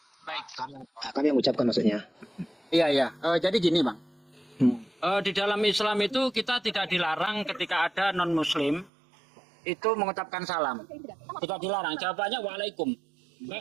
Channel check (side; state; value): left; drops out; at 8.9 s